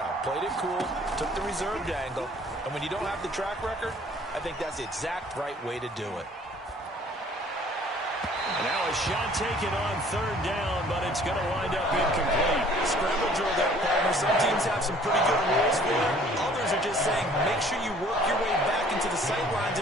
Played it cool, took the reserved angle, and when you don't have the track record, I think that's the exact right way to do it. And now a shot taken on third down, but it's going to wind up incomplete. Scramble drill there, partner. Some teams have some pretty good rules for it. Others are just saying make sure you work your way back into the sight lines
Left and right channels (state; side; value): normal; both; correlation 0.55